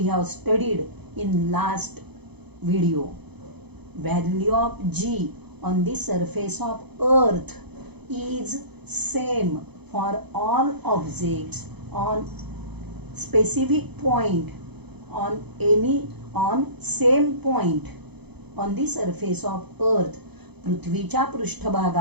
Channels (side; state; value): left; late; 0.98 ms